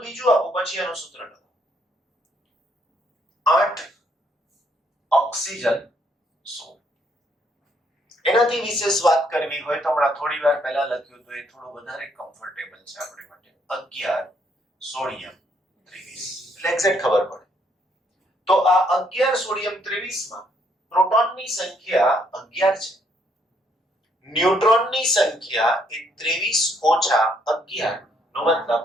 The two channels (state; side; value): normal; both; correlation 0.70